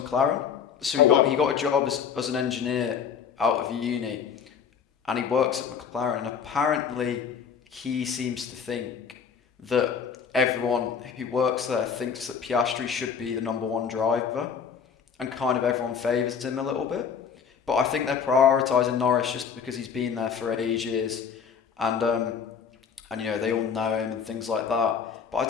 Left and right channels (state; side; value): quieter; right; 6.9 dB